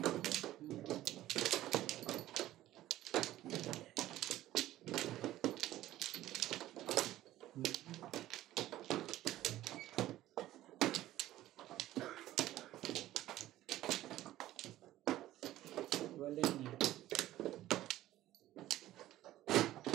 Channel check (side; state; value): left; quieter; 14.7 dB